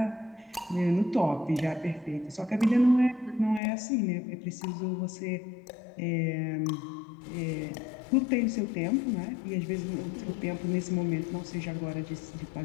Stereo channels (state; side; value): drops out; right; at 3.6 s